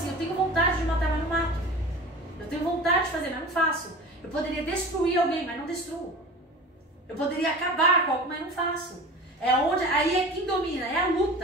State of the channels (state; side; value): normal; both; correlation 0.36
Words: eu tenho vontade de matar, mas não mato. Eu tenho vontade de fazer, mas não faço. Eu poderia destruir alguém, mas não destruo. Eu poderia acabar com algo, mas não faço. Aí é quem domina, é a